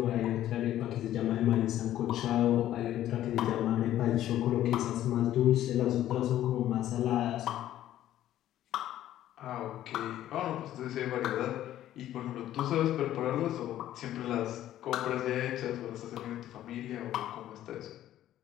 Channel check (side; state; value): right; quieter; 12.7 dB